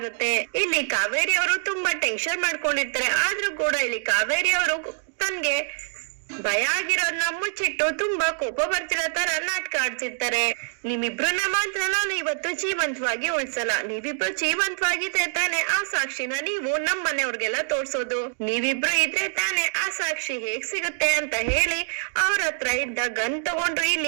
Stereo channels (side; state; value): left; silent; digital silence